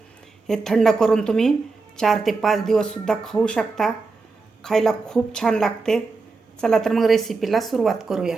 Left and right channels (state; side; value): quieter; left; 4.0 dB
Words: हे थंड करून तुम्ही 4 ते 5 दिवससुद्धा खाऊ शकता. खायला खूप छान लागते. चला तर मग रेसिपीला सुरुवात करूया.